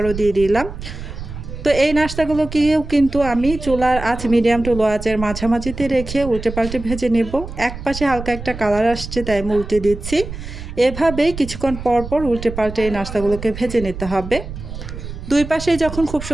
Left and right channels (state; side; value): noise; right; rumble, 10 dB below the sound